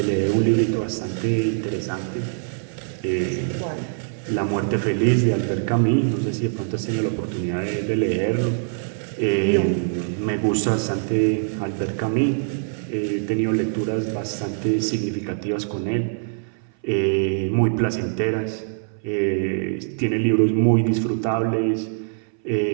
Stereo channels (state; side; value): silent; left; 60 dB below the other